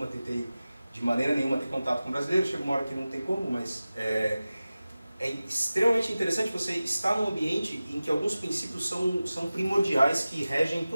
tentei de maneira nenhuma ter contato com brasileiro, chega uma hora que não tem como, mas é extremamente interessante você estar num ambiente em que alguns princípios são primordiais que regem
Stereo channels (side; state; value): both; inverted; correlation -0.96